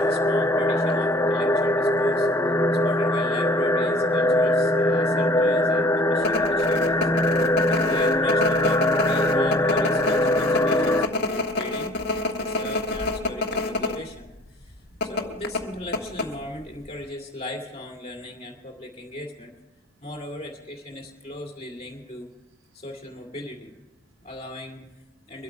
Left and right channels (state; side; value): normal; both; correlation 0.50